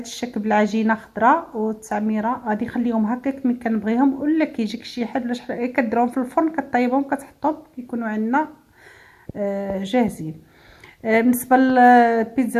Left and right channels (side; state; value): both; identical; correlation 1.00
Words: الشكل بالعجينه خضراء والتعميره. غادي نخليهم هكاك ملي كنبغيهم، ولا كيجيك شي حد ولا شحال كديرهم في الفرن كطيبهم كتحطهم كيكونوا عندنا جاهزين. بالنسبه